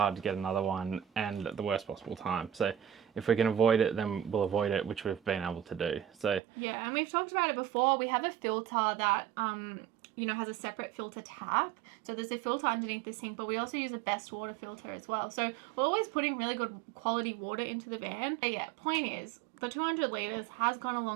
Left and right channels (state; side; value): drops out; left; at 6.4 s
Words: to get another one, and at the worst possible time. So if we can avoid it, then we'll avoid it, which we've been able to do. So yeah, and we've talked about it before. We have a filter that has a separate filter tap. So there's a filter underneath the sink, but we also use a best water filter as well. So we're always putting really good quality water into the van. But yeah, point is, the 200 litres has gone a